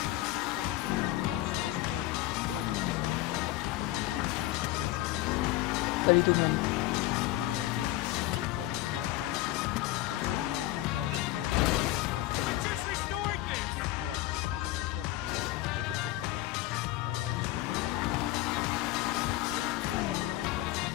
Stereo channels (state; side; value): quieter; right; 16.7 dB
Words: Notus, comment allez-vous? Moi ça va nickel. Aujourd'hui on se retrouve en compagnie de Z57. Salut tout le monde. Pour une vidéo sur GTN, une vidéo information concernant les braquages et les mises à jour à ce 24 online. Alors j'ai plusieurs infos à vous donner et plutôt pas mal. Alors c'est des modèles où il y a pas de qui ont trouvé ça dans les codes